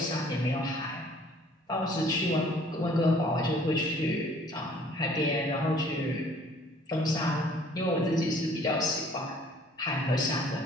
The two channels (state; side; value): normal; both; correlation 0.56